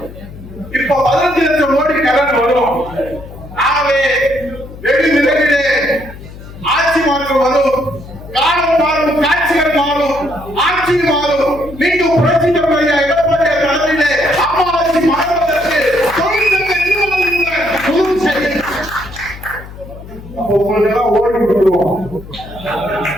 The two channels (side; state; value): left; noise; hum, 16 dB below the sound